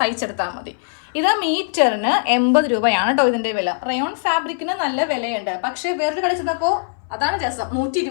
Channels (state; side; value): silent; right; 61 dB below the other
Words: മതി. ഇത് മീറ്ററിന് 80 രൂപയാണ് കേട്ടോ ഇതിന്റെ വില. റയോൺ ഫാബ്രിക്കിന് നല്ല വിലയുണ്ട്. പക്ഷേ വേറൊരു കടയിൽ ചെന്നപ്പോൾ അതാണ് രസം,